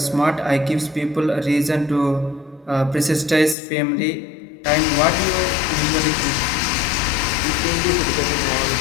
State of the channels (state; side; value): drops out; right; at 3.6 s